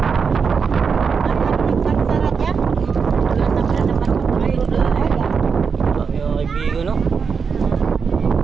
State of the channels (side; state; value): left; quieter; 5.8 dB